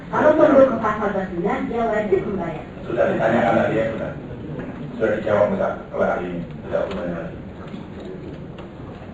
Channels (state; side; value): identical; both; correlation 1.00